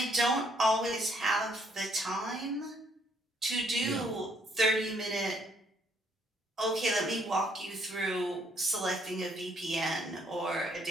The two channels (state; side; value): normal; both; correlation 0.68